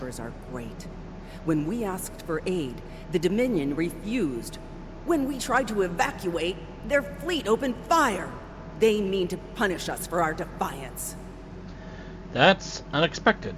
are great. When we asked for aid, the Dominion refused. When we tried to evacuate, their fleet opened fire. They mean to punish us for our defiance. That's unexpected.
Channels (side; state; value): both; identical; correlation 1.00